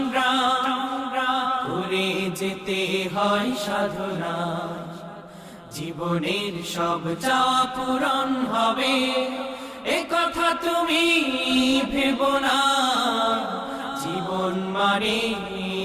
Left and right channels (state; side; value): identical; both; correlation 1.00